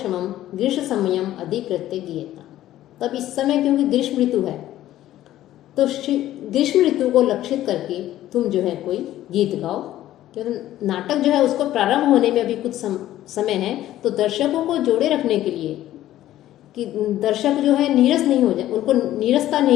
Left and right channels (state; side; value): quieter; right; 13.6 dB